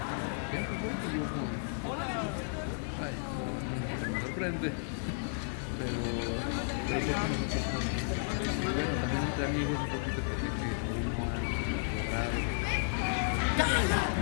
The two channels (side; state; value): right; silent; 56 dB below the other